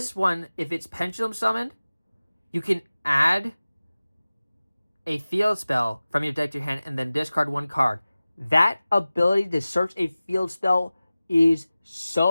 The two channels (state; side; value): inverted; both; correlation -0.97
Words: one, if it's Pendulum summoned, you can add a field spell from your deck to your hand and then discard one card. That ability to search a field spell is